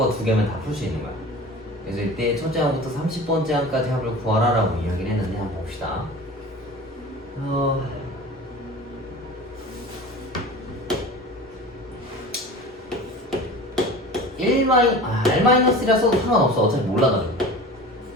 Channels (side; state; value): both; normal; correlation 0.37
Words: 두 개면 다 풀 수 있는 거야. 그래서 이때 첫째 항부터 30번째 항까지 합을 구하라라고 이야기를 했는데 한번 봅시다. R-1이라서도 상관없어. 어차피 몰라가지고.